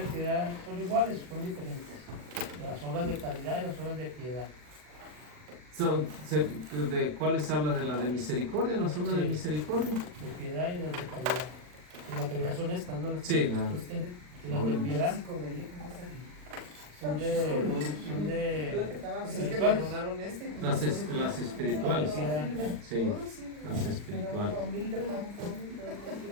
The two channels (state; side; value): late; left; 40 ms